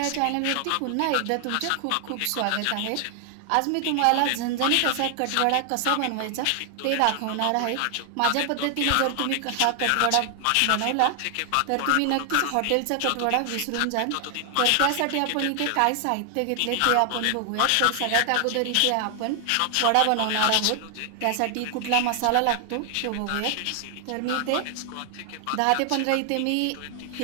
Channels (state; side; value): different; both; correlation 0.00